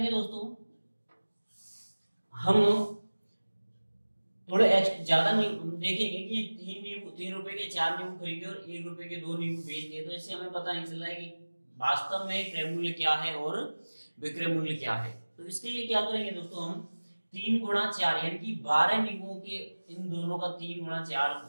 दोस्तों, हम थोड़े ज्यादा देखेंगे कि 3 रुपए के 4 नींबू खरीदे और 1 रुपए के 2 नींबू बेच दिए, तो इससे हमें पता नहीं चल रहा है कि वास्तव में क्रय मूल्य क्या है और विक्रय मूल्य क्या है। तो इसके लिए क्या करेंगे दोस्तों, हम 3 गुणा 4 यानी कि 12 नींबुओं के इन दोनों का 3 गुणा 4,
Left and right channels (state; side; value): inverted; both; correlation -1.00